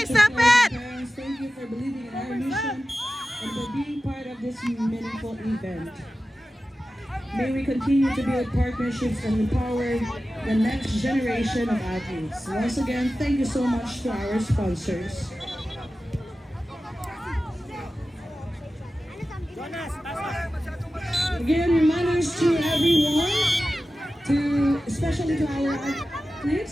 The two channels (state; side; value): normal; both; correlation 0.94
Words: teachers, stop players, it! and parents, thank you for believing in our mission and for being part of this meaningful event. May we continue to build partnerships and empower the next generation of athletes. Once again, thank you so much to our sponsors. Jonas, pasok. Again, reminders to everyone, especially to our